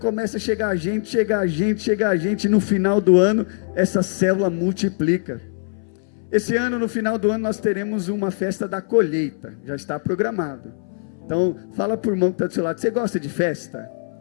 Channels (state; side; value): silent; right; 61 dB below the other